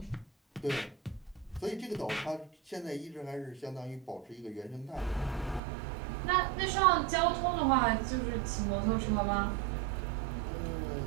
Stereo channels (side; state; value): left; drops out; at 5.6 s